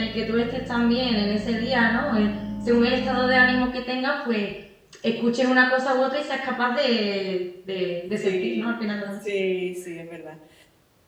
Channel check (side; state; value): both; identical; correlation 1.00